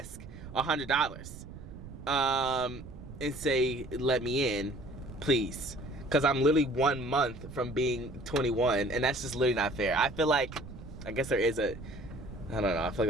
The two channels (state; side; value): noise; right; rumble, 14 dB below the sound